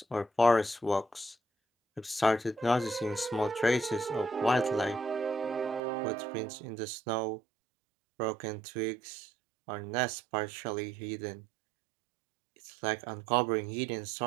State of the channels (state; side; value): drops out; left; at 5.8 s